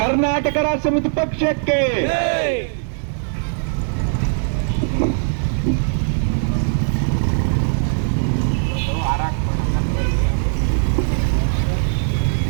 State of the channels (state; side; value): silent; left; digital silence